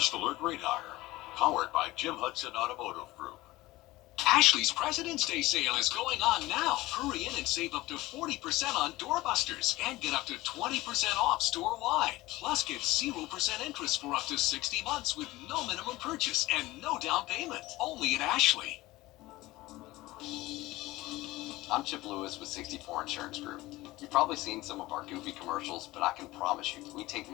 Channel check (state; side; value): quieter; right; 18.7 dB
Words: Alert Radar, powered by Jim Hudson Automotive Group. Ashley's President's Day sale is going on now. Hurry in and save up to 40% on doorbusters and get up to 20% off store-wide. Plus, get 0% interest for up to 60 months with no minimum purchase and no down payment. Only at Ashley. I'm Chip Lewis with 64 Insurance Group. You've probably seen some of our goofy commercials, but I can promise you, we take